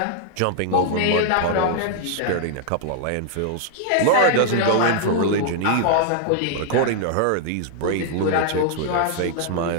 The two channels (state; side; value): different; both; correlation -0.01